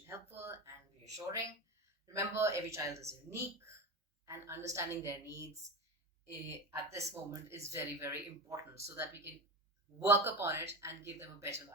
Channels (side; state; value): both; normal; correlation 0.23